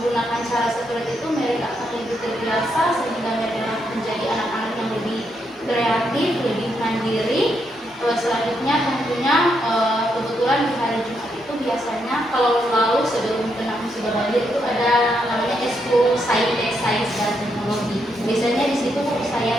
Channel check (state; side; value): normal; both; correlation 0.79